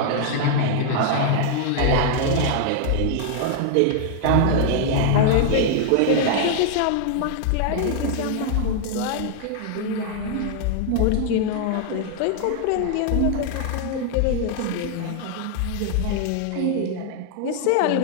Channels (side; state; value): both; different; correlation 0.00